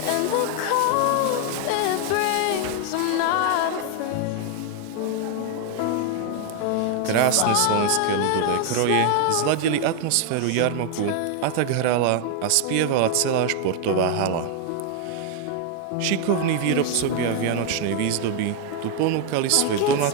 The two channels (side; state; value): both; different; correlation 0.00